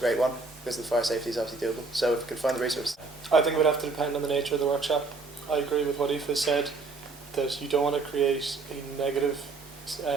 one, because the fire safety is obviously doable, so if we could find the resources. I think it would have to depend on the nature of the workshop. I agree with what Aoife said, that you don't want to create a negative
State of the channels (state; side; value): quieter; left; 3.8 dB